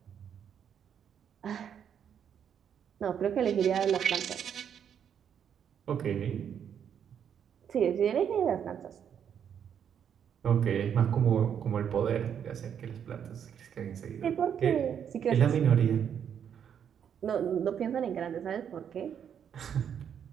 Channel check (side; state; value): left; quieter; 8.4 dB